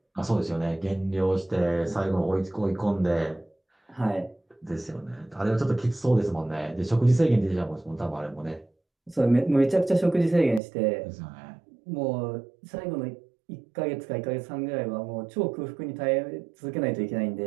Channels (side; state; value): left; drops out; at 10.6 s